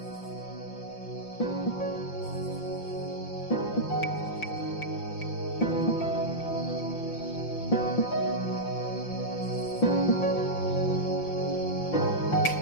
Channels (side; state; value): right; late; 5.8 ms